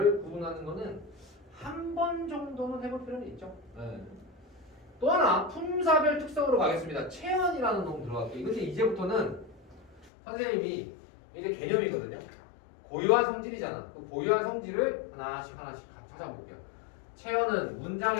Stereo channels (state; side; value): drops out; right; at 10.1 s